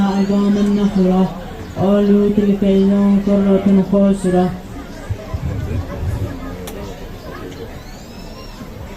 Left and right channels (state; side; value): identical; both; correlation 1.00